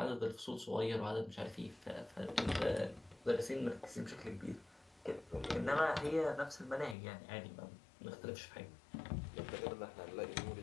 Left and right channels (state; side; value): drops out; right; at 7.0 s